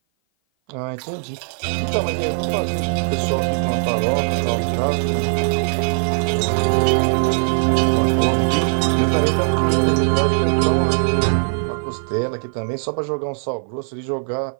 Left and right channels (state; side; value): silent; left; 57 dB below the other